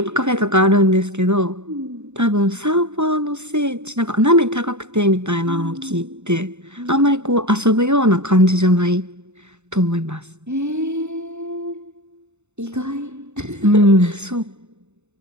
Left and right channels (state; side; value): late; left; 0.82 ms